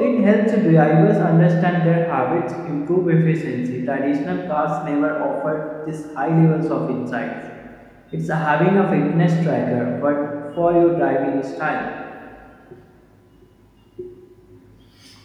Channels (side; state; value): both; identical; correlation 1.00